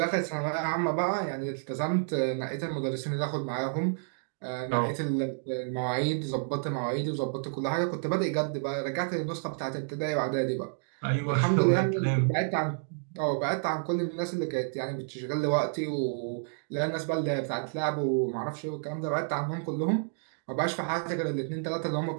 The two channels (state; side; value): silent; left; digital silence